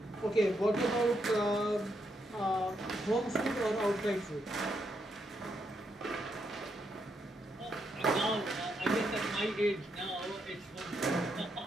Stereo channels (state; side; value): normal; both; correlation 0.79